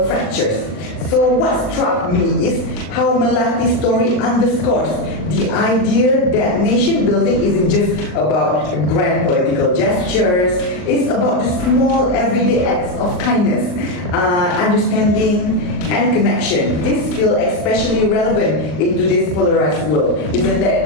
fractures. So what struck me is how Melati's story underscores the idea that nation building isn't just about grand political gestures. It's about the small everyday acts of kindness, understanding, and connection. This feels especially relevant in today's polarized world. Isn't that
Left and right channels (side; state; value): right; late; 39 ms